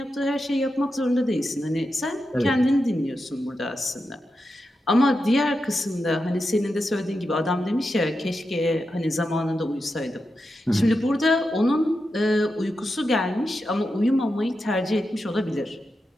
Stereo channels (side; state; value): both; normal; correlation 0.89